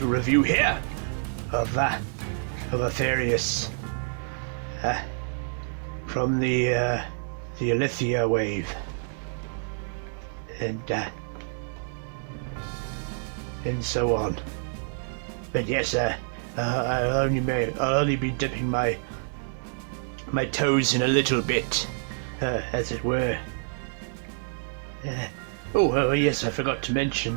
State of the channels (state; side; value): silent; left; 60 dB below the other